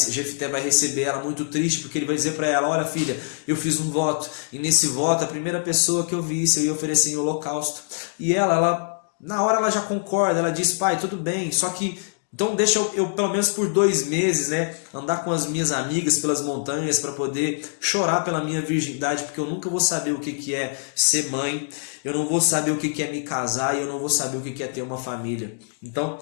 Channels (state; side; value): silent; right; digital silence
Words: Jefté vai receber ela muito triste, porque ele vai dizer para ela: olha, filha, eu fiz um voto, e nesse voto a primeira pessoa que eu visse eu ia oferecer em holocausto. E ela na hora ela já concorda, ela diz: pai, tudo bem, só que Então deixa eu pelo menos por 2 meses, né, andar com as minhas amigas pelas montanhas para poder chorar pela minha virgindade, porque eu nunca vou saber o que que é ser mãe, eu não vou saber o que que é me casar e eu não vou saber o que que é ter uma família. Então